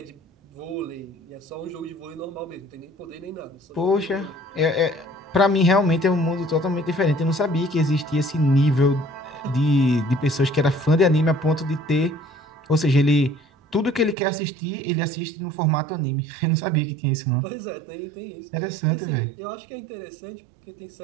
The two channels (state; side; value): drops out; left; at 14.2 s